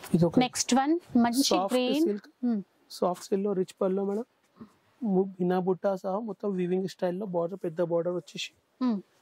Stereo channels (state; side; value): identical; both; correlation 1.00